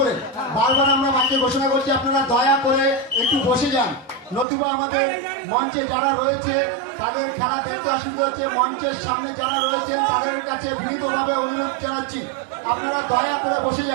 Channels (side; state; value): left; drops out; at 4.5 s